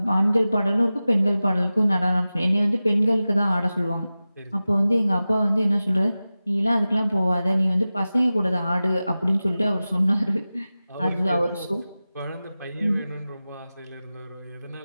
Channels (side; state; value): both; inverted; correlation -0.96